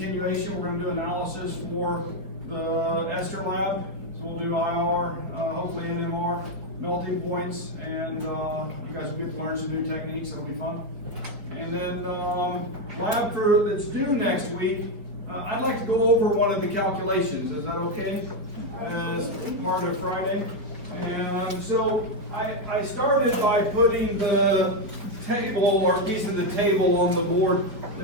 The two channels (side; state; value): left; late; 4.5 ms